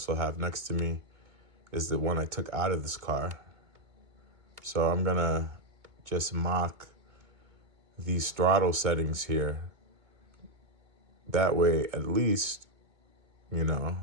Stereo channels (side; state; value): left; late; 2.2 ms